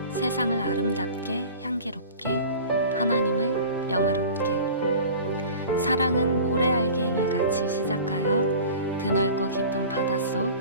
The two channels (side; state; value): both; inverted; correlation -0.40